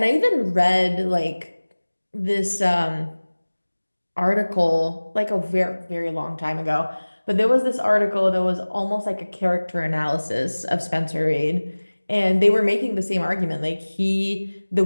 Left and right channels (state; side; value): inverted; both; correlation -1.00